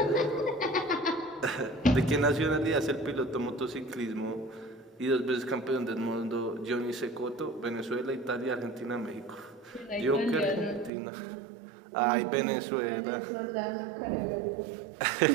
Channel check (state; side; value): drops out; left; at 10.9 s